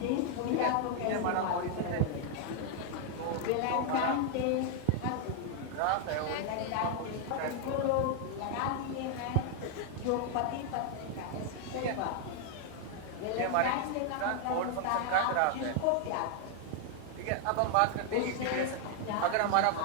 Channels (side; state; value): both; different; correlation 0.00